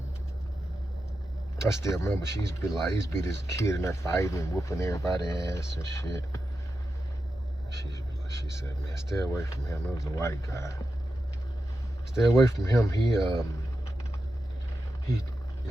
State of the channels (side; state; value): both; normal; correlation 0.90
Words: I still remember she used to be this kid in there fighting and whooping everybody's ass and shit. She said, man, stay away from him. It was a white guy. Stay away from him. He